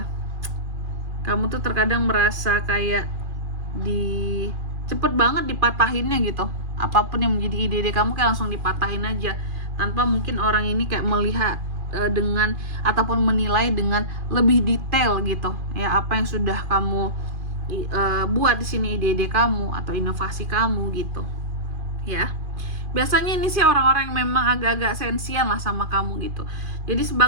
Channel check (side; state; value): left; late; 2.4 ms